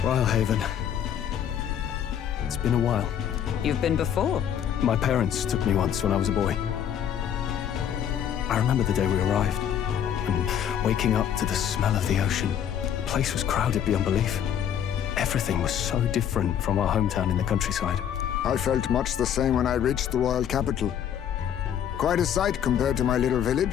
Rhylehaven. It's been a while. You've been before. My parents took me once when I was a boy. I remember the day we arrived, and waking up to the smell of the ocean. The place was crowded beyond belief. Everything was so different from our hometown in the countryside. I felt much the same when I reached the royal capital. Quite a sight compared to my little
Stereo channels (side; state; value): right; quieter; 9.4 dB